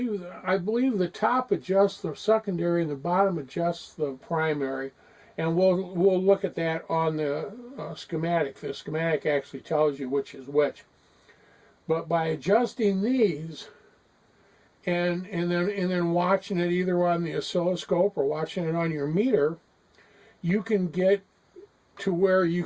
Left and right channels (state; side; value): identical; both; correlation 1.00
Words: the top adjusts the secondary and the bottom adjusts the primary. And we'll look at that on the schematic. The schematic actually tells you which is which. But by adjusting these and then watching it either on the oscilloscope or watching it on your meter, you can get to where